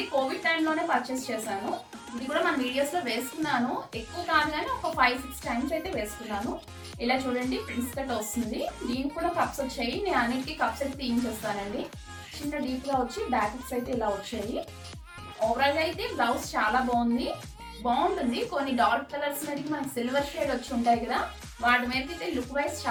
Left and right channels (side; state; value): both; identical; correlation 1.00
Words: కోవిడ్ టైంలోనే పర్చేస్ చేశాను. ఇది కూడా మన వీడియోస్లో వేసుకున్నాను, ఎక్కువ కాదు కానీ ఒక 5-6 టైమ్స్ అయితే వేసుకున్నాను. ఇలా చూడండి, ప్రిన్స్ కట్ వస్తుంది. దీనికి కూడా కప్స్ వచ్చాయి, నేను అన్నిటికీ కప్స్ అయితే తీయించేస్తానండి. చిన్న డీప్గా వచ్చి బ్యాకెట్స్ అయితే ఇలా వచ్చాయి. ఓవరాల్గా అయితే బ్లౌజ్ చాలా బాగుంటుంది. కొన్ని డార్క్ కలర్స్ మీదకి మనకి సిల్వర్ షేడ్ వచ్చి ఉంటాయి కదా, వాటి మీద అయితే లుక్ వైజ్